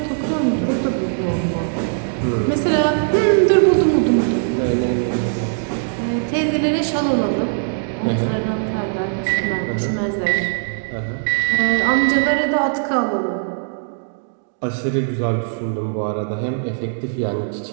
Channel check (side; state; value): left; silent; digital silence